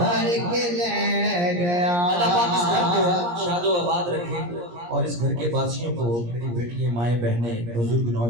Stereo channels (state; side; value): late; left; 17 ms